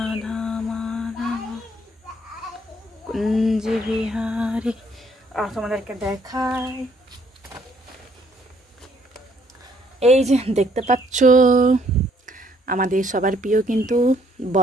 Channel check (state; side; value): normal; both; correlation 0.66